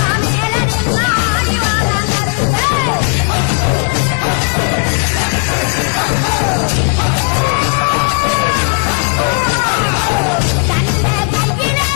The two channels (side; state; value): right; quieter; 37.6 dB